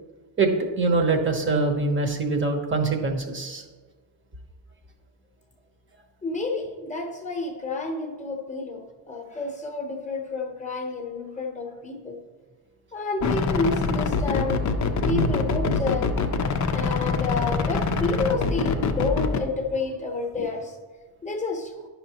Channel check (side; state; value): both; normal; correlation 0.17